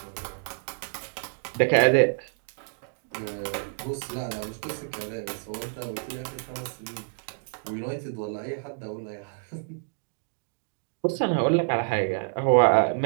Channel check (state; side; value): silent; left; digital silence